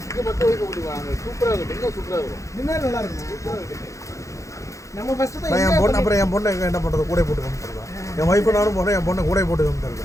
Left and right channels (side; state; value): right; late; 0.15 ms